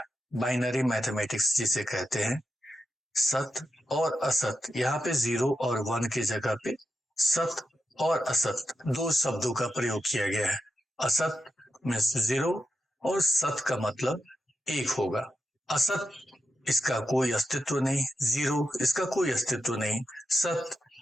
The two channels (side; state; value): both; normal; correlation 0.87